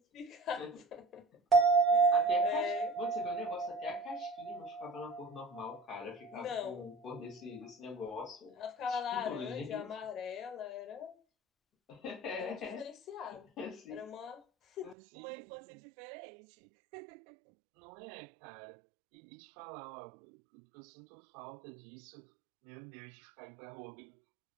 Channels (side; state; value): left; drops out; at 15.0 s